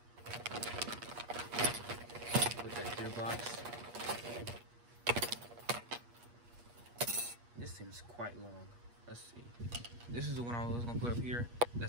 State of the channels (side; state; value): left; late; 8.4 ms